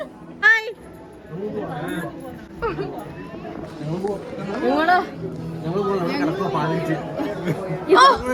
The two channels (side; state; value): both; identical; correlation 1.00